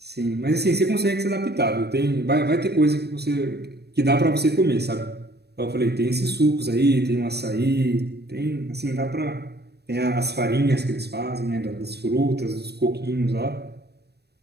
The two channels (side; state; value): left; late; 0.47 ms